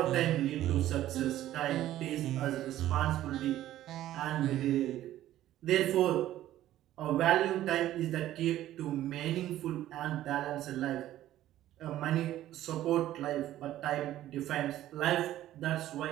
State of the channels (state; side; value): quieter; left; 13.5 dB